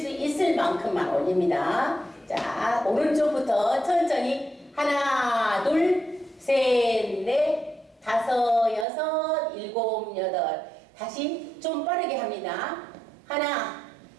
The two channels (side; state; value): left; drops out; at 8.8 s